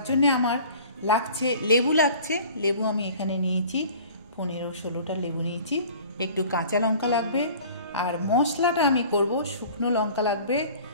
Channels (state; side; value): inverted; both; correlation -0.46